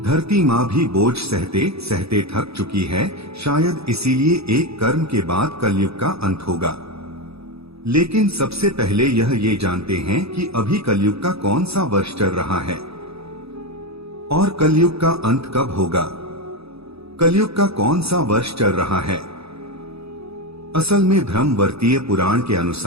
माँ भी बोझ सहते सहते थक चुकी है। शायद इसीलिए एक कर्म के बाद कलयुग का अंत होगा। लेकिन सबसे पहले ये जानते हैं कि अभी कलयुग का कौन सा वर्ष चल रहा है और कलयुग का अंत कब होगा। कलयुग का कौन सा वर्ष चल रहा है? असल में ब्रह्मवर्तीय पुराण के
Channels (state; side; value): late; left; 0.78 ms